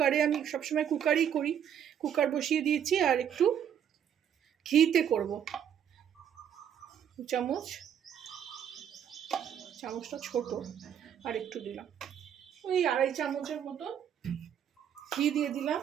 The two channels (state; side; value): quieter; left; 9.0 dB